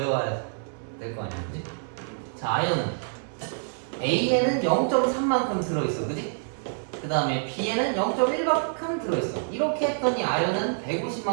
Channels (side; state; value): left; silent; 57 dB below the other